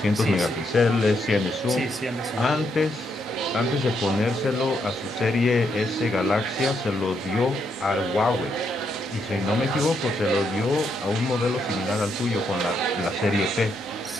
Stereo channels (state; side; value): normal; both; correlation 0.78